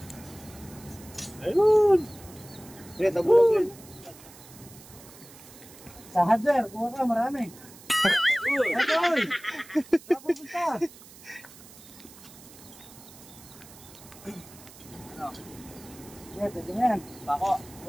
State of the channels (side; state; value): right; noise; hiss, 20 dB below the sound